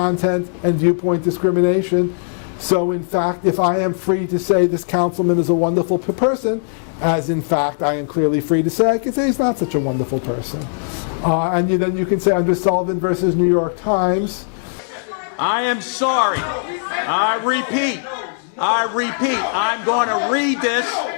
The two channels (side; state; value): right; silent; digital silence